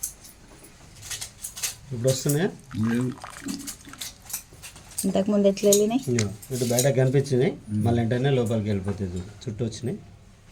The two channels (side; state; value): both; identical; correlation 1.00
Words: ఇప్పుడు వస్తున్నాయా? ఇంతకుముందు ఎట్లా వెళ్ళినాయి? ఇటు బయట కనిపించినాయి, మళ్ళీ వెంటనే లోపలికి వెళ్ళిపోతుంది. చుట్టూ వచ్చినాయి,